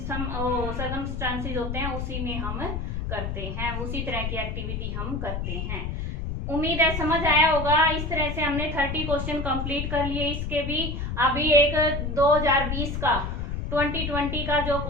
होते हैं, उसी में हम करते हैं, उसी तरह की एक्टिविटी हम करते हैं। उम्मीद है समझ आया होगा। इस तरह से हमने 30 क्वेश्चन कंप्लीट कर लिए। इसके भी अभी एक 2020 का 2020 का जो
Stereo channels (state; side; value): noise; left; rumble, 3 dB below the sound